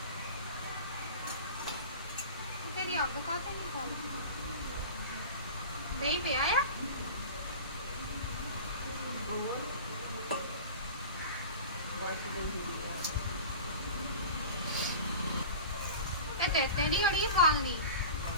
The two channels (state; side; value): inverted; both; correlation -0.35